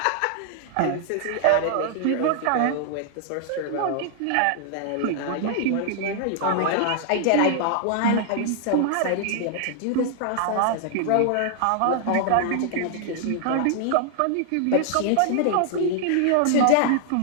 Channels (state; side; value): different; both; correlation -0.01